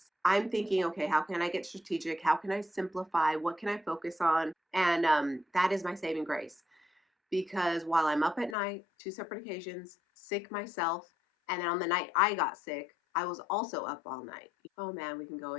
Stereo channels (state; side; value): drops out; right; at 8.6 s